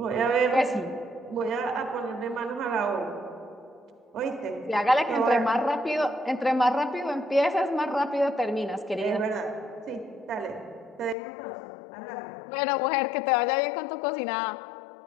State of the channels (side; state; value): right; drops out; at 11.2 s